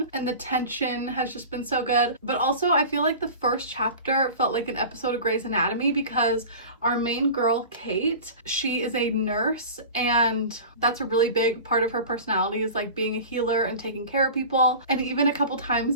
and the tension has just been so good. But also, I feel like the first chapter felt like an episode of Grey's Anatomy, because our main girl, Kate, she is a nurse, and that's a really big part of her personality, is like being a healer and taking care of people. And even a couple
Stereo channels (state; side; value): inverted; both; correlation -0.35